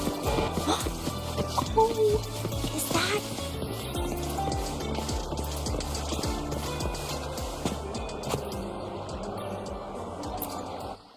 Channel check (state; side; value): identical; both; correlation 1.00